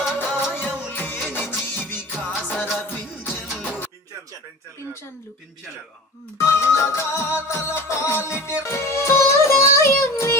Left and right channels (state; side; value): normal; both; correlation 0.35